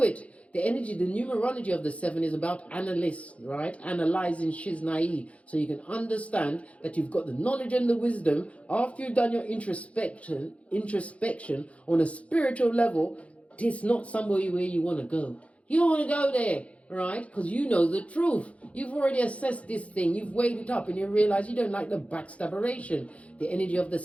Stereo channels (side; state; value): right; late; 0.064 ms